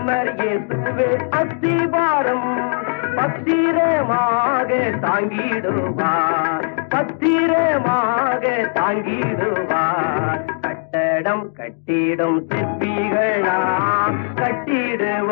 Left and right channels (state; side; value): silent; right; digital silence